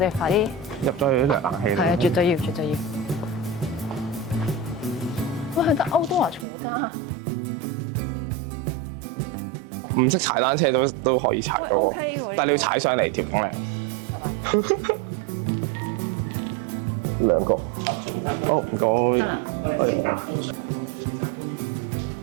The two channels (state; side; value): drops out; left; at 6.5 s